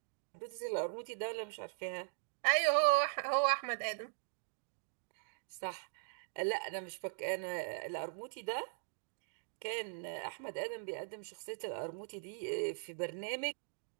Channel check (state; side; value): silent; left; digital silence